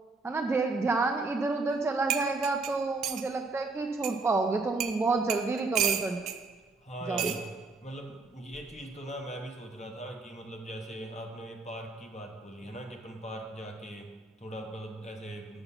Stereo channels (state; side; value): quieter; left; 3.7 dB